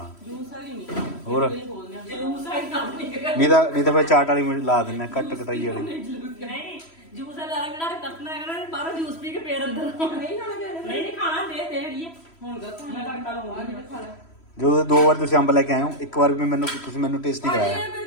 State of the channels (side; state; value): right; late; 3.1 ms